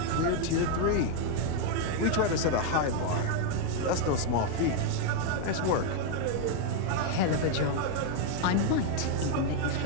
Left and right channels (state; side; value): different; both; correlation 0.01